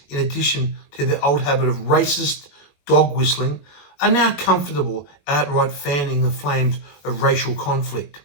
in addition to their old habit of racist dog whistling, are now comfortable outright fanning the flames of racial conflict."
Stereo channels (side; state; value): right; late; 21 ms